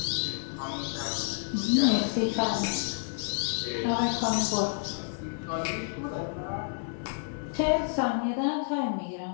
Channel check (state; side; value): silent; right; 58 dB below the other